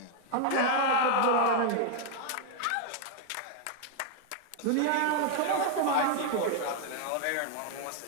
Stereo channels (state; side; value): different; both; correlation 0.00